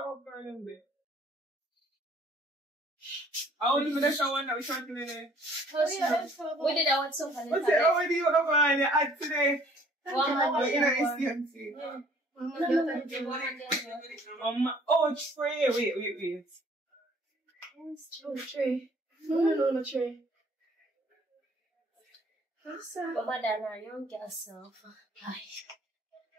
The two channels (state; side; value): normal; both; correlation 0.57